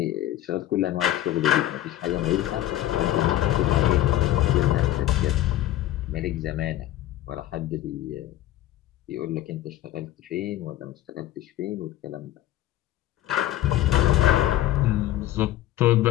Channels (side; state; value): right; quieter; 14.0 dB